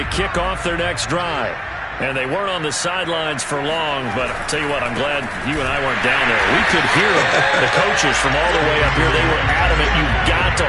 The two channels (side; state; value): both; identical; correlation 1.00